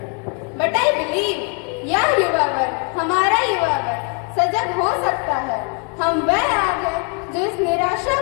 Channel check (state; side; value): quieter; right; 37.8 dB